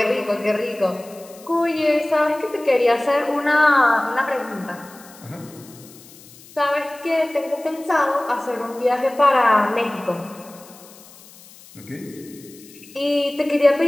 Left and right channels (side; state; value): left; noise; hiss, 22 dB below the sound